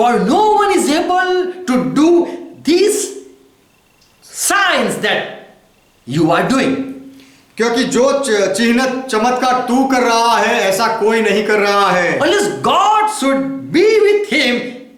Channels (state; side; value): identical; both; correlation 1.00